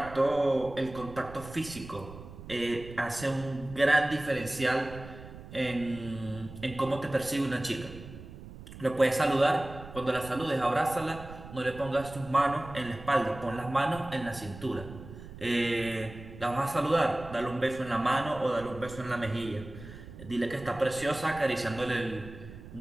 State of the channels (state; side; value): noise; right; rumble, 15 dB below the sound